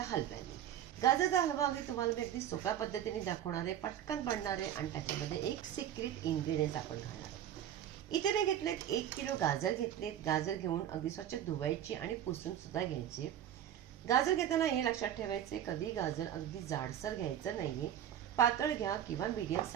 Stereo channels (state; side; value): quieter; left; 10.6 dB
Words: हलव्याने. गाजरचा हलवा अगदी तुम्हाला मी अगदी सोप्या पद्धतीने दाखवणार आहे, पटकन बनणार आहे आणि त्याच्यामध्ये एक सिक्रेट इन्ग्रेडियंट्स आपण घालणार आहोत. इथे मी घेतलेत 1 किलो गाजर घेतलेत. गाजर घेऊन अगदी स्वच्छ धुवायची आणि पुसून सुद्धा घ्यायची. गाजर घेताना हे लक्षात ठेवायचे, कधी गाजर अगदी जाडसर घ्यायचं नाहीये, पातळ घ्या किंवा मीडियम